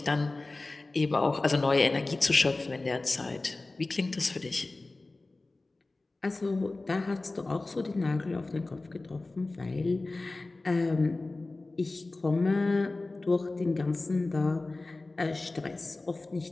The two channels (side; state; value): right; quieter; 3.2 dB